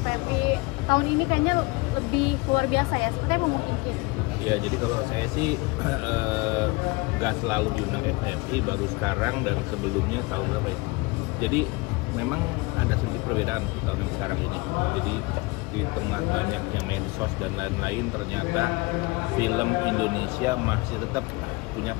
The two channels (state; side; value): quieter; right; 25.0 dB